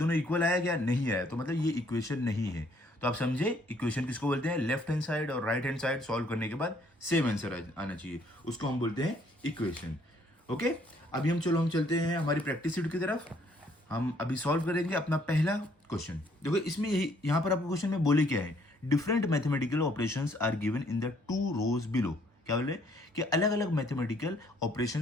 इक्वल आया क्या, नहीं आया, तो मतलब ये इक्वेशन नहीं है। तो आप समझे इक्वेशन किसको बोलते हैं, लेफ्ट हैंड साइड और राइट हैंड साइड सॉल्व करने के बाद सेम आंसर आना चाहिए, उसको हम बोलते हैं इक्वेशन। ओके, अभी हम चलते हैं हमारी प्रैक्टिस शीट की तरफ। हम अभी सॉल्व करेंगे अपना पहला क्वेश्चन। देखो इसमें यही यहाँ पर आपको क्वेश्चन में बोले क्या है, different mathematical operations are given in the 2 rows below. क्या बोले कि अलग अलग मैथमेटिकल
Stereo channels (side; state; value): both; normal; correlation 0.65